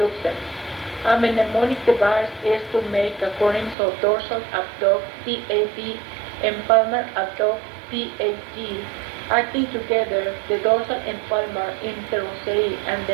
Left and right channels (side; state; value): left; drops out; at 3.8 s